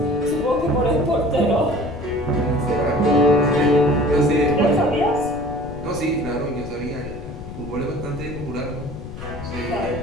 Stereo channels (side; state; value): left; noise; rumble, 11 dB below the sound